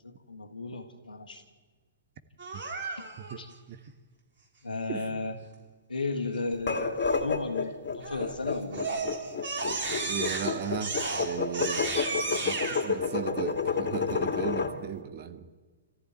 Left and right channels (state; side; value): inverted; both; correlation -0.45